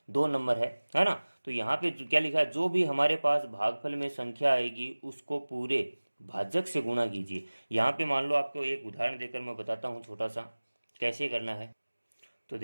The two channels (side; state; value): both; inverted; correlation -1.00